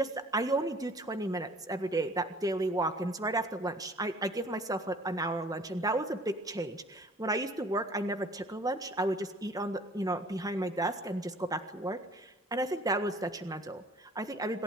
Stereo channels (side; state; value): both; normal; correlation 0.52